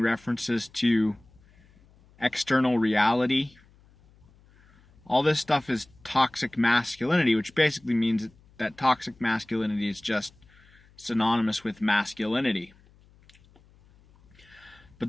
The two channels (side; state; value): left; noise; hum, 29 dB below the sound